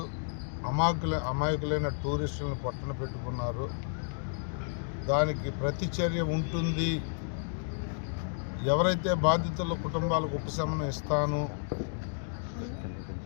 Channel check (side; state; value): right; silent; digital silence